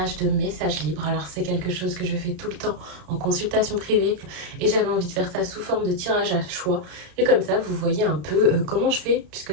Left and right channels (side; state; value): left; late; 33 ms